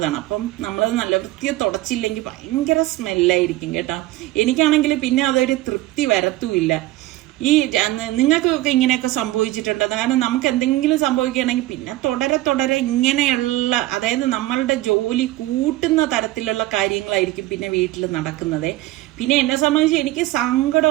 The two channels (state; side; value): quieter; left; 16.8 dB